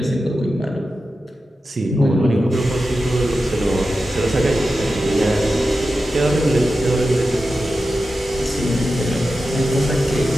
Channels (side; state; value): both; normal; correlation 0.92